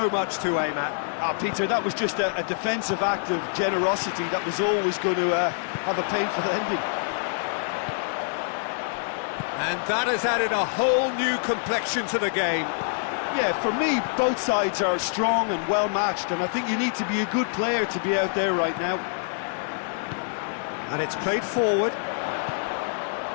much to aim at. Peter, that was just a defensive act of generosity that was always going to have a painful ending. And that has added a whole new complexion to the game. Yeah, for me, both sides are strong and well-matched, and I think you need to be a good player to be out there right now. And it's played forward.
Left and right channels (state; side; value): silent; right; digital silence